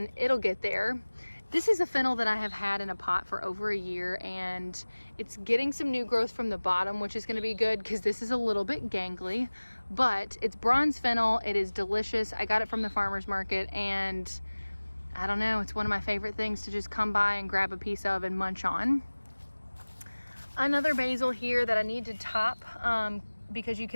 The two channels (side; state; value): both; inverted; correlation -1.00